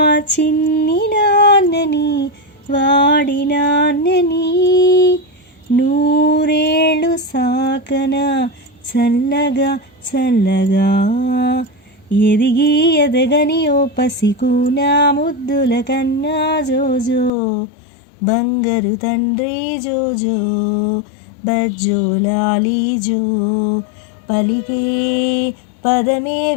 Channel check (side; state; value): right; drops out; at 17.3 s